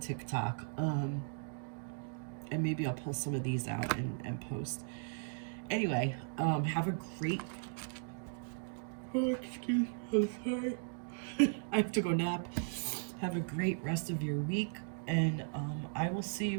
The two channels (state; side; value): silent; left; digital silence